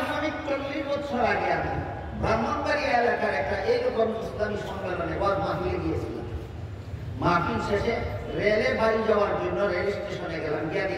40 বছর আগে আমি ব্রাহ্মণবাড়িয়া এলাকার একটা এইরকম ইসলামী সম্মেলনে মাহফিলে গিয়েছিলাম। মাহফিল শেষে রেলে বাড়ি যাওয়ার জন্য রেল স্টেশনে গেলাম। গিয়ে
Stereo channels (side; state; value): both; identical; correlation 1.00